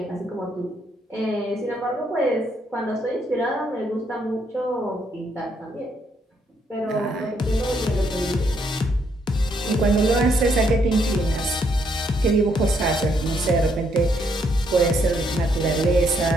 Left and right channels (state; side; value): normal; both; correlation 0.73